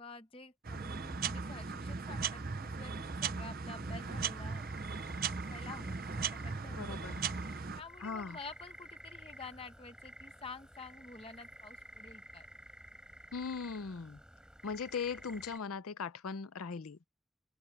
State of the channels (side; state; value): both; normal; correlation 0.35